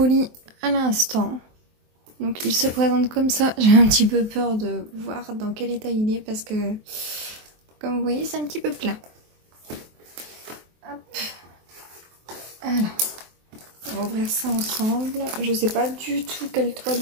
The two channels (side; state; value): left; late; 23 ms